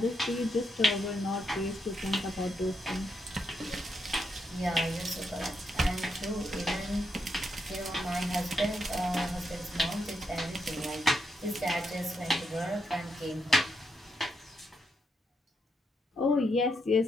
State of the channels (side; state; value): both; normal; correlation 0.81